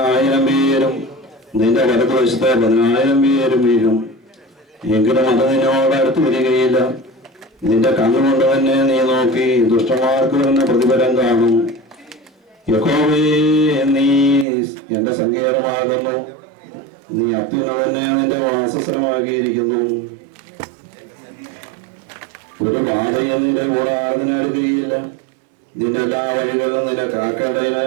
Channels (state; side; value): drops out; left; at 14.5 s